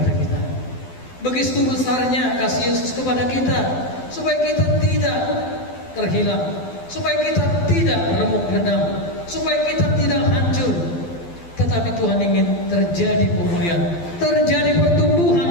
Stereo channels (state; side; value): late; right; 12 ms